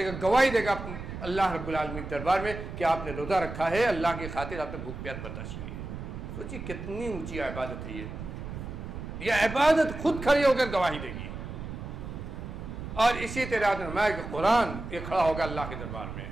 گا، گواہی دے گا اللہ رب العالمین کے دربار میں کہ آپ نے روزہ رکھا ہے، اللہ کی خاطر آپ نے بھوک پیاس برداشت کی ہے. سوچیے کتنی اونچی عبادت ہے یہ عبادت خود کھڑی ہو کر گواہی دے گی. اور اسی طرح فرمایا کہ قرآن یہ کھڑا ہوگا اللہ کے دربار میں.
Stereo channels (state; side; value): noise; right; rumble, 8 dB below the sound